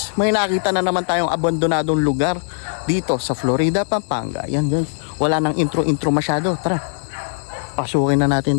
may nakita na naman tayong abandonadong lugar dito sa Florida, Pampanga. Yan guys, wala nang intro masyado. Tara, pasukin na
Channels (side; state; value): right; silent; digital silence